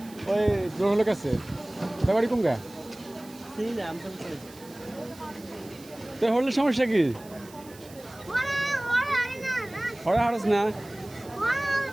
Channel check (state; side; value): noise; right; hiss, 21 dB below the sound